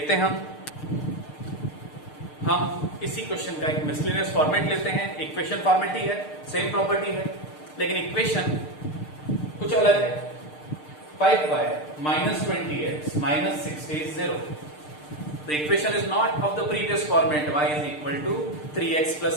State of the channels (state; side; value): late; right; 6.6 ms